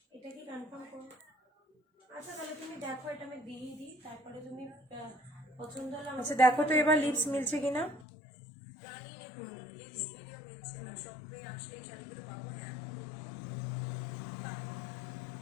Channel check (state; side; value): drops out; right; at 8.1 s